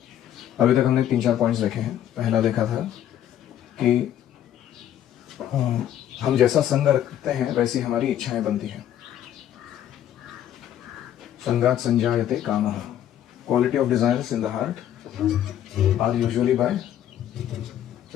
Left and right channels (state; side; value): quieter; right; 11.0 dB